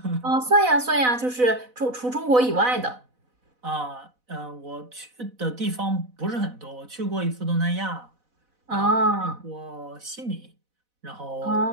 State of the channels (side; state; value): left; late; 4.0 ms